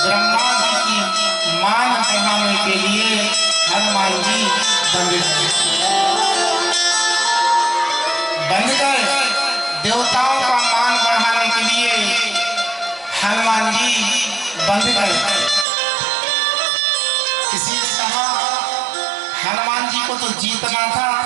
ब्रह्मा जी की मान बढ़ाने के लिए हनुमान जी बंद गए। देवताओं का मान बढ़ाने के लिए हनुमान जी बंद गए। किसी ने कहा हनुमान जी को तो जीतना था,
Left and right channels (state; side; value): drops out; left; at 15.7 s